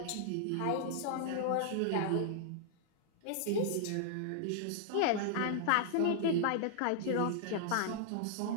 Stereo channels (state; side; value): different; both; correlation -0.01